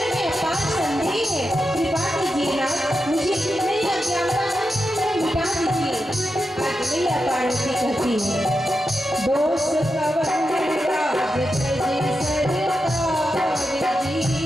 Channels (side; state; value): both; normal; correlation 0.88